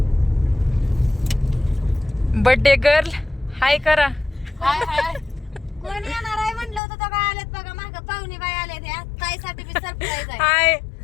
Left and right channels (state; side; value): drops out; right; at 6.8 s